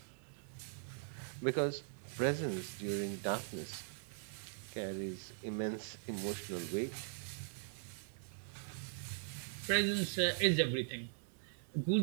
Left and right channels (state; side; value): silent; left; digital silence